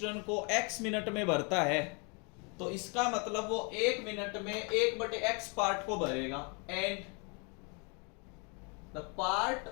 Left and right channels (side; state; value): right; quieter; 34.2 dB